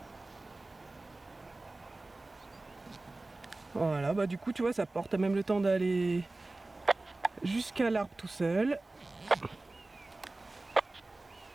Voilà, bah du coup, tu vois, ça porte même le temps d'aller jusqu'à l'arbre tout seul.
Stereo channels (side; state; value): left; quieter; 3.0 dB